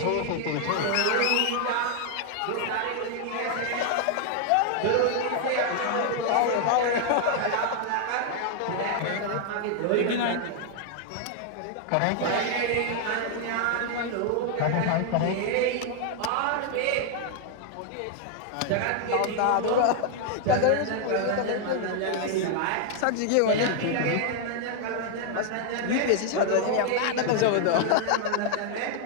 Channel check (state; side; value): different; both; correlation 0.00